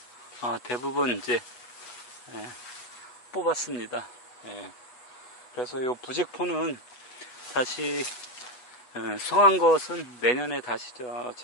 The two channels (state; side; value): late; right; 8.0 ms